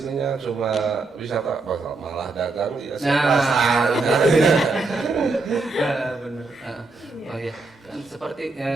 cuma wisata, malah dagang ya. Benar. Oh iya. Kan seperti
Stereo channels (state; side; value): quieter; left; 3.6 dB